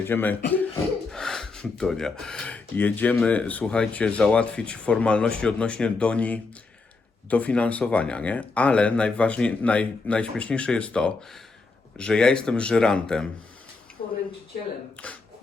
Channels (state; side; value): quieter; right; 4.0 dB